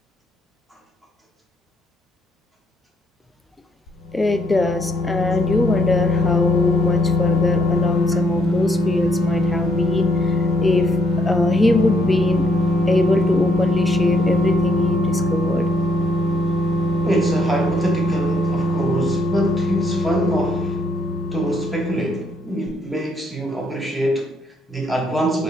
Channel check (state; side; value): normal; both; correlation 0.70